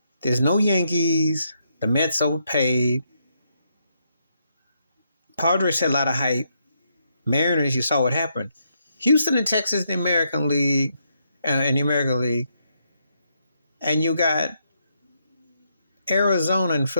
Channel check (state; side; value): inverted; both; correlation -0.78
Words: There's no Yankees. The Mets overpaid. Padres had a lot of hype. Mariners, you saw what happened. Houston and Texas in the American League, and you got Arizona and